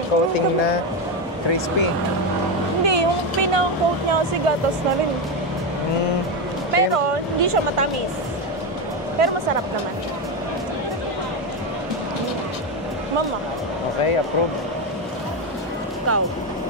coating na crispy. Hindi, yung pinang-coat niya kasi gatas na rin. Pero hindi siya matamis. Pero masarap naman. Mama, Okay, approve. ikaw.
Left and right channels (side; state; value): both; normal; correlation 0.11